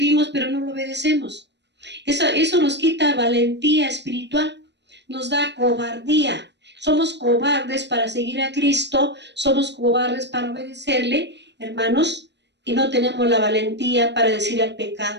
pero no lo obedecemos. Eso nos quita valentía espiritual, nos da cobardía. Somos cobardes para seguir a Cristo, somos cobardes para obedecerle, hermanos, y no tenemos la valentía para decir al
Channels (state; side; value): late; left; 0.51 ms